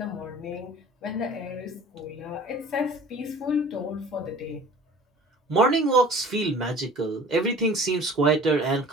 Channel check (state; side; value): normal; both; correlation 0.45